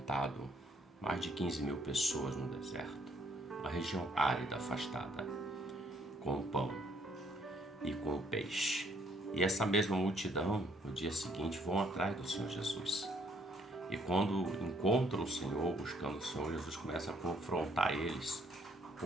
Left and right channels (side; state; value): both; normal; correlation 0.66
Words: mais de 15 mil pessoas no deserto, uma região árida, afastada, com o pão e com o peixe. E essa mesma multidão, no dia seguinte, vão atrás do Senhor Jesus. E quando encontram o Senhor, buscando o Senhor, Jesus começa a confrontar eles